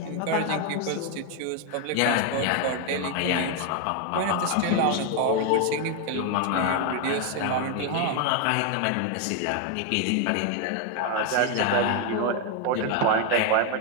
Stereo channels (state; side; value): different; both; correlation 0.01